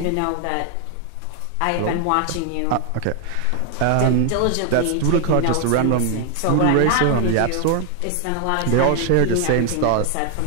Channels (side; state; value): both; different; correlation 0.00